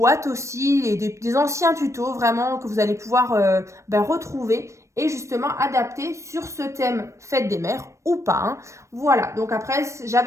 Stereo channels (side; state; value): left; late; 0.15 ms